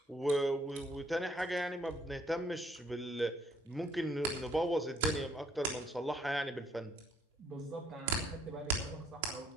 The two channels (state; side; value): normal; both; correlation 0.66